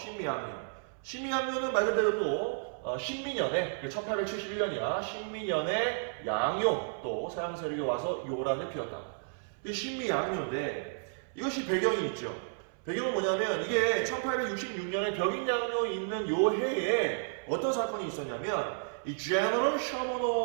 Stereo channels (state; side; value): silent; left; 56 dB below the other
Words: 신미양요는 말 그대로 또 신미년에 1871년이야. 신미년에 양요 또 서양 세력이 와서 요란을 피웠다. 이 신미양요인데 이것이 배경이 있죠. 배경은 뭐냐면 이게 1866년에 벽인양요 있는 요 해에 어떤 사건이 있었냐면 이 제너럴